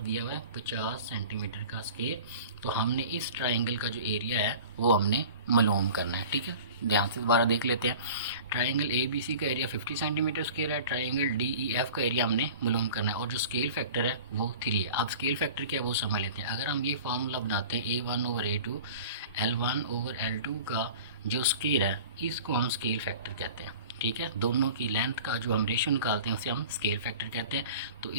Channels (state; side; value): inverted; both; correlation -0.41